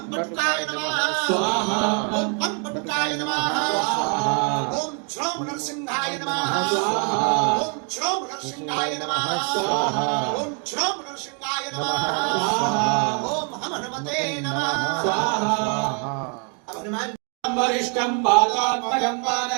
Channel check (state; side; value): quieter; left; 39.5 dB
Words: पटुकाय नमः स्वाहा ओम पम पटुकाय नमः ओम श्रोम नरसिंहाय नमः ओम श्रोम नरसिंहाय नमः ओम श्रोम नरसिंहाय नमः ओम हनुमते नमः अब हनुमान वरिष्ठं बालात्मजं